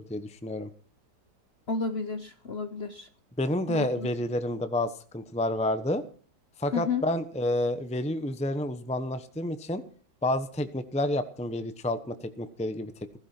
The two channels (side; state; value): both; normal; correlation 0.46